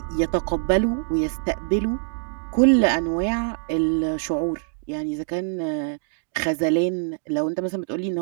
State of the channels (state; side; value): silent; left; digital silence